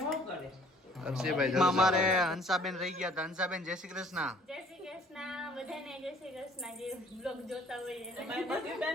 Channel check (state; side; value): normal; both; correlation 0.56